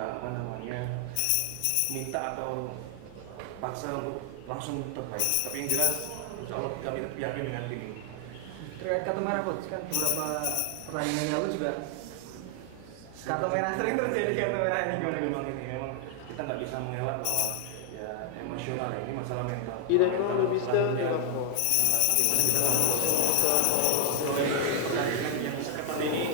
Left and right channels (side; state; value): both; different; correlation 0.00